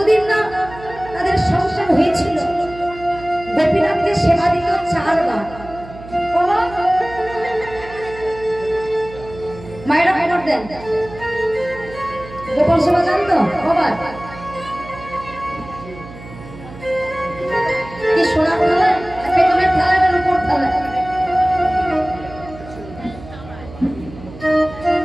না তাদের সংসার হয়েছিল, গোপীনাথকে সেবা দিত 4 বার। মায়েরা খবর দেন, গোপাল সেবা জানতো কবার? কি সোনা থালা, পেতলের থালা, এটার উপর থালা,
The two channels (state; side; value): noise; right; hum, 16 dB below the sound